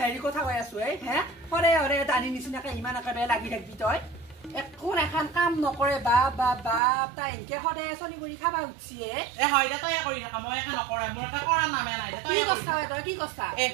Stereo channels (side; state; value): left; drops out; at 6.8 s